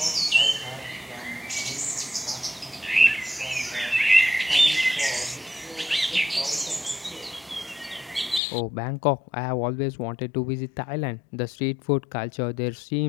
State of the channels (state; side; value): drops out; right; at 8.4 s